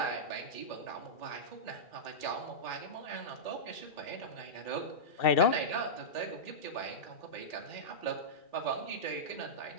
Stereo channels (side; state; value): right; late; 2.4 ms